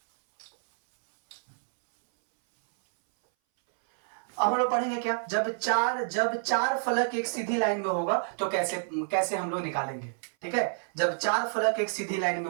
अब हम लोग पढ़ेंगे क्या, जब चार फलक एक सीधी लाइन में होगा तो कैसे कैसे हम लोग निकालेंगे। ठीक है, जब चार फलक एक सीधी लाइन में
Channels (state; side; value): silent; left; 59 dB below the other